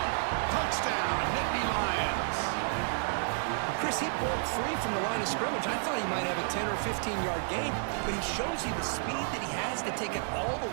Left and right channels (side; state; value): left; silent; 57 dB below the other